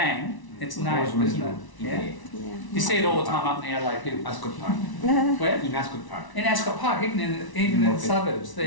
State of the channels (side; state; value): right; late; 1.0 ms